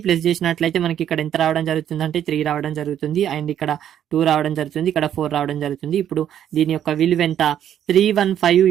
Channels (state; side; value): quieter; left; 10.2 dB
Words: ప్లస్ చేసినట్లయితే మనకి ఇక్కడ ఎంత రావడం జరుగుతుంది అంటే 3 రావడం జరుగుతుంది. అండ్ ఇక్కడ 2 రావడం జరుగుతుంది, ఇక్కడ 4 రావడం జరుగుతుంది. ఇప్పుడు దీని యొక్క విలువ ఎంత, 315